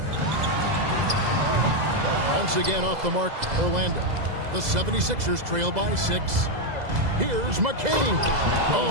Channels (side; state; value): left; late; 2.0 ms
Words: Once again off the mark, Orlando. The 76ers trail by 6. Here's McCain.